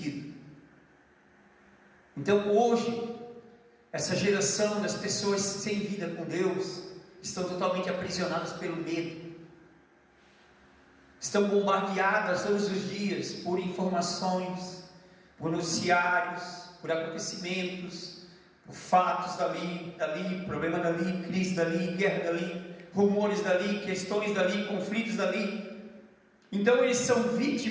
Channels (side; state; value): both; identical; correlation 1.00